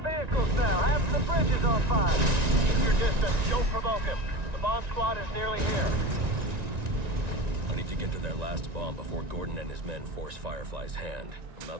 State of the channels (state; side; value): late; left; 1.9 ms